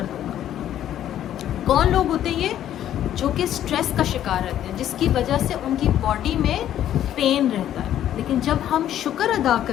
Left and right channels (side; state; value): right; quieter; 11.4 dB